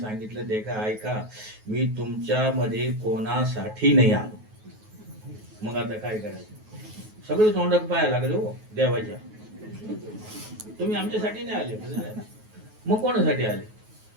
देखा ऐका, मी तुमच्यामध्ये कोणासाठी नाही आलो। मग आता काय करायचं? सगळं तोंडात पाया लागले हो देवाच्या, तुम्ही आमच्यासाठी नाही आले, मग कोणासाठी आले?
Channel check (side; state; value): left; late; 9.3 ms